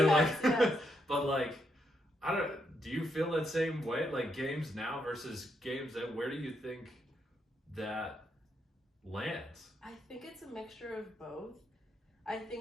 yes, like, yes. but like, do you feel that same way? Like games now versus games then, where do you think that lands? I think it's a mixture of both. I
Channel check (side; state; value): both; normal; correlation 0.79